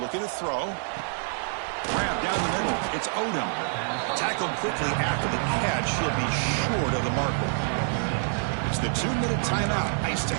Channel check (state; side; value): silent; left; 60 dB below the other